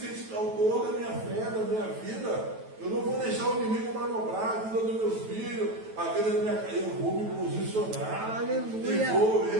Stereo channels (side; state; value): left; late; 9.2 ms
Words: autor da minha fé, da minha vida. Eu não vou deixar o inimigo manobrar a vida dos meus filhos, a vida da minha casa. Eu vou me posicionar. Aleluia. E vou